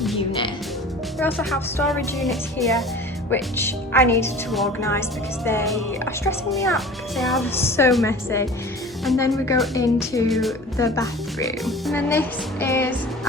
unit. We also have storage units here, which I needed to organise because they are stressing me out because they are so messy. And then we go into the bathroom. And then this is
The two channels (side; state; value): both; normal; correlation 0.41